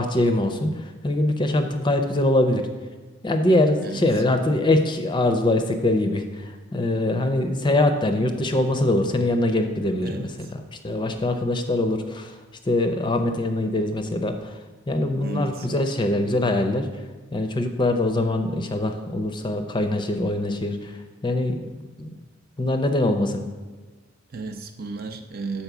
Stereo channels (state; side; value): normal; both; correlation 0.64